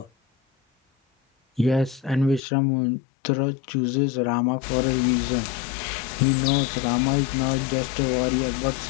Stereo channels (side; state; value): right; drops out; at 2.4 s